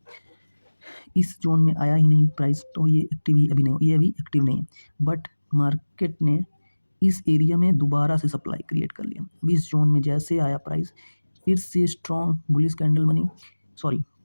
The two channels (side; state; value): both; inverted; correlation -1.00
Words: इस ज़ोन में आया ही नहीं प्राइस, तो ये एक्टिव ही अभी नहीं, ये अभी एक्टिव नहीं है। बट मार्केट ने इस एरिया में दोबारा से सप्लाई क्रिएट कर लिया। अभी इस ज़ोन में जैसे आया प्राइस, फिर से स्ट्रॉन्ग बुलिश कैंडल बनी, सॉरी